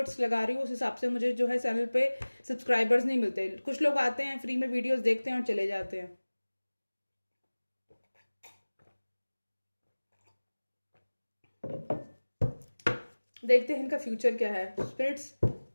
लगा रही हूँ, उस हिसाब से मुझे जो है चैनल पे सब्सक्राइबर्स नहीं मिलते। कुछ लोग आते हैं फ्री में वीडियोस देखते हैं और चले जाते हैं। देखते हैं इनका फ्यूचर क्या है, स्पिरिट्स,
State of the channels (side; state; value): both; inverted; correlation -1.00